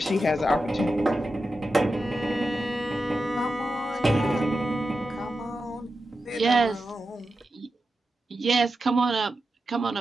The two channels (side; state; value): both; normal; correlation 0.90